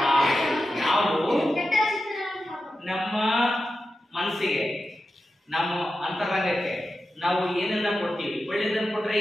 ನಾವು ನಮ್ಮ ಮನಸ್ಸಿಗೆ, ನಮ್ಮ ಅಂತರಂಗಕ್ಕೆ ನಾವು ಏನನ್ನ ಕೊಡ್ತೀವಿ, ಒಳ್ಳೇದನ್ನ ಕೊಟ್ರೆ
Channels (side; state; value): both; normal; correlation 0.91